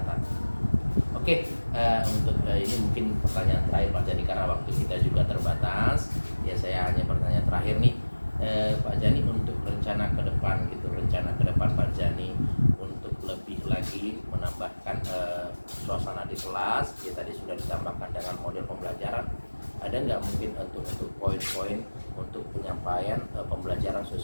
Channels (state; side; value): inverted; both; correlation -1.00